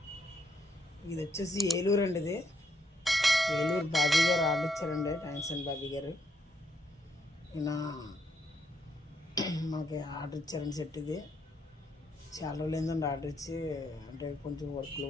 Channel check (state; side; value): normal; both; correlation 0.75